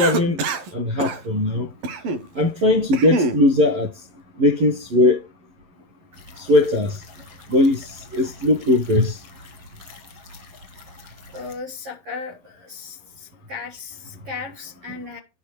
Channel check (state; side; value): late; left; 11 ms